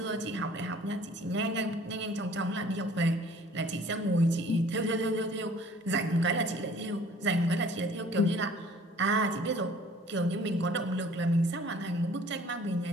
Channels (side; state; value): both; normal; correlation 0.52